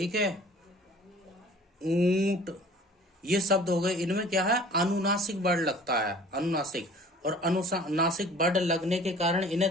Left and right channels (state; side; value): normal; both; correlation 0.48